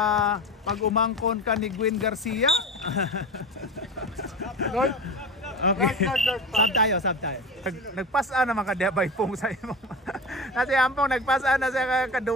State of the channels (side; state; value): both; normal; correlation 0.29